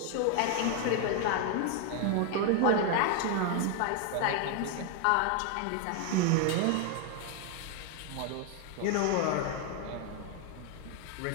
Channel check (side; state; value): both; different; correlation 0.01